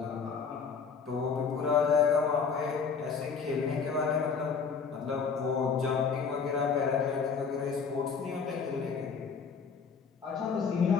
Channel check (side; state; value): right; quieter; 5.8 dB